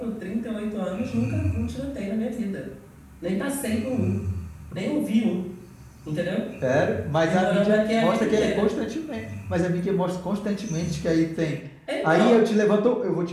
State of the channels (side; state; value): both; identical; correlation 1.00